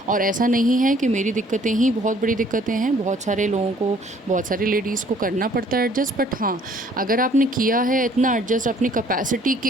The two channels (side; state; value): both; normal; correlation 0.59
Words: और ऐसा नहीं है कि मेरी दिक्कतें ही बहुत बड़ी दिक्कतें हैं, बहुत सारे लोगों को, बहुत सारी लेडीज़ को करना पड़ता है एडजस्ट। बट हाँ, अगर आपने किया है इतना एडजस्ट अपनी कैपेसिटी के